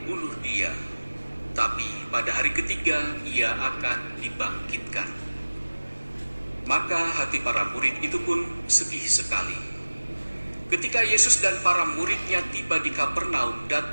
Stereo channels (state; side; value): inverted; both; correlation -1.00